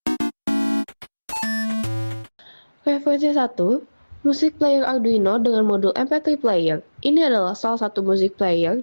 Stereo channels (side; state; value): both; inverted; correlation -1.00